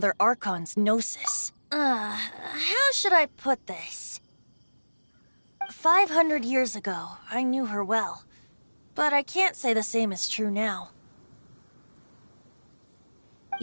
Archon's Gnosis. How should I put this? 500 years ago, I knew her well. But I can't say the same is true now.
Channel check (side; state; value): both; inverted; correlation -1.00